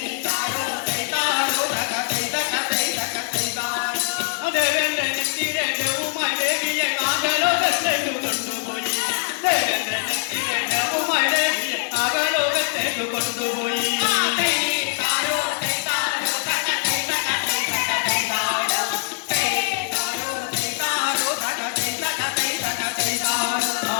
ദേവേന്ദ്രനെത്തിരെ ദേവുമായി ദേവിയെ നാഗലോകത്തേക്കു കൊണ്ടുപോയി. ദേവേന്ദ്രനെത്തിരെ ദേവുമായി ദേവിയെ നാഗലോകത്തേക്കു കൊണ്ടുപോയി.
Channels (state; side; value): silent; right; digital silence